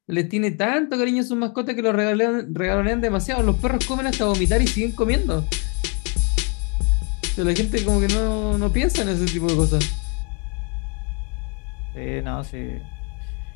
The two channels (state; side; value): quieter; right; 35.0 dB